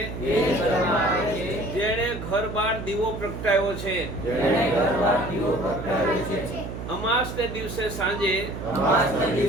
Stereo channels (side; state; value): right; noise; hum, 8 dB below the sound